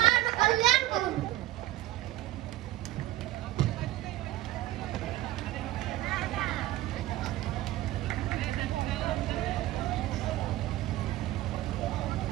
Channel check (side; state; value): left; quieter; 15.4 dB